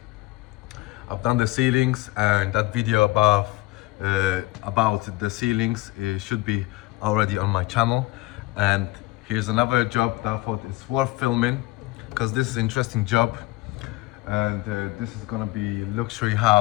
I've done the ceilings, and that video about the ceilings should be already on my channel. And here's another job that I thought is worth filming because this is an interesting job. And this is gonna be luxury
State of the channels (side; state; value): right; quieter; 20.1 dB